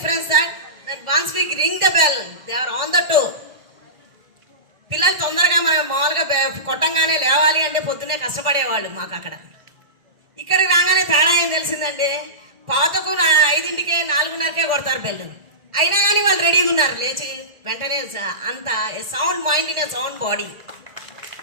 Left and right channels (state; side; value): late; left; 1.5 ms